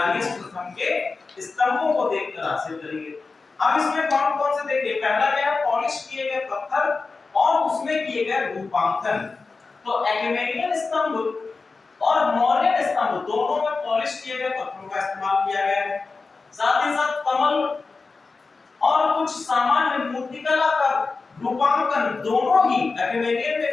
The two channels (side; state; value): right; quieter; 4.1 dB